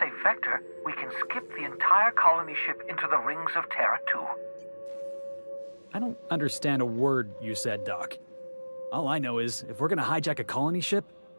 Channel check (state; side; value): inverted; both; correlation -1.00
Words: vector, we can skip the entire colony ship into the rings of Terra 2. I don't understand a word you said, Doc. All I know is, if we're gonna hijack a colony ship,